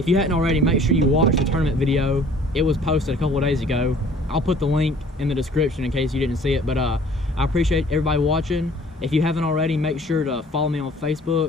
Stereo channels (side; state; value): both; normal; correlation 0.53